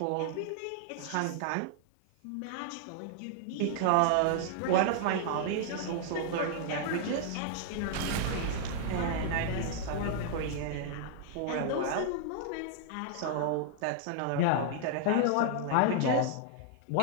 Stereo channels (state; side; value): different; both; correlation -0.01